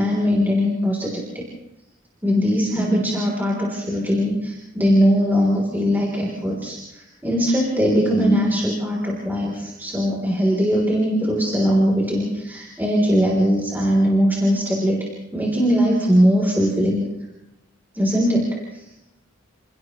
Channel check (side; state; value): both; normal; correlation 0.83